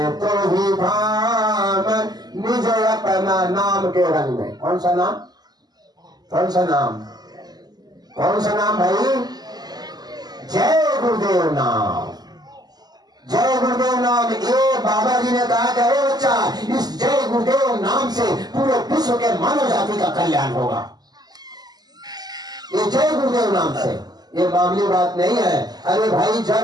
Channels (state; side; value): late; left; 0.20 ms